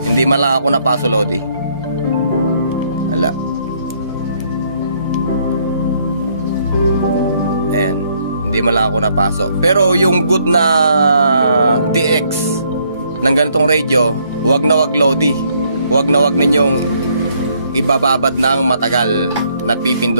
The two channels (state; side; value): inverted; both; correlation -0.68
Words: Hindi man lang ako napaso, Lodi. Wala. Ayan, hindi man lang ako napasok. Pero yung good na TX ng ganitong radio, wag na wag, Lodi. Wag na wag ninyong ibababad ng matagal na